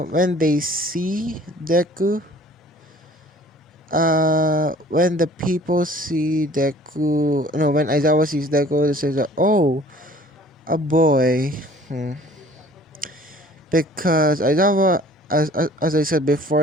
they see Deku, when the people see Deku, no, when Aizawa sees Deku, they say that, oh, a boy. Because Aizawa, as I said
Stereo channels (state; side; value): normal; both; correlation 0.51